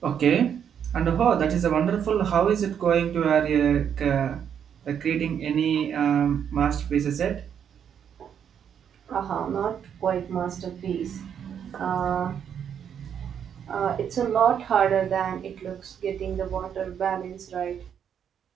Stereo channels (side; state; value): left; quieter; 8.3 dB